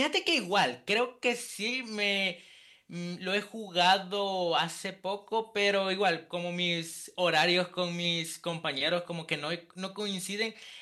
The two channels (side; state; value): both; identical; correlation 1.00